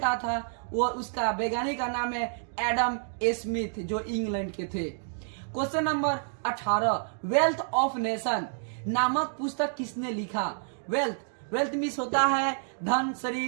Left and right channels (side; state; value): left; silent; digital silence